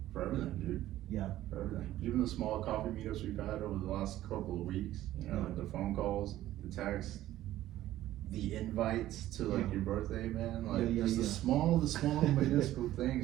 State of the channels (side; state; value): left; quieter; 14.2 dB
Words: for everything, dude. Yeah. For everything. Even the small coffee meetups we've had over the last couple of weeks, like the phone calls, the texts, the invites to like your birthday, man. Like just the small minuscule